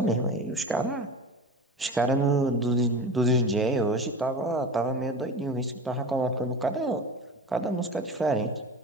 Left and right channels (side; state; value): both; normal; correlation 0.32